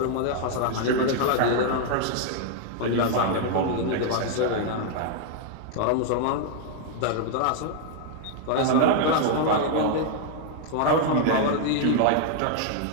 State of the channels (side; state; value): both; different; correlation 0.00